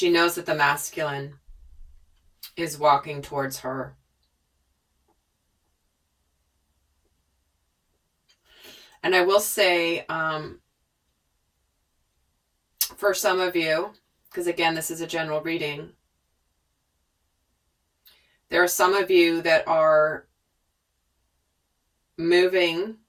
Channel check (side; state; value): both; identical; correlation 1.00